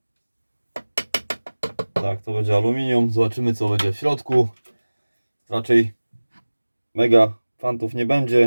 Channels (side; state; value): both; inverted; correlation -1.00